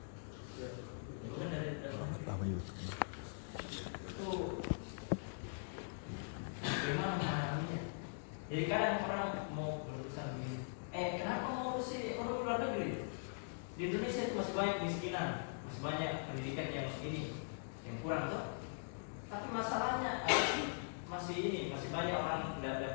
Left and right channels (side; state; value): right; silent; digital silence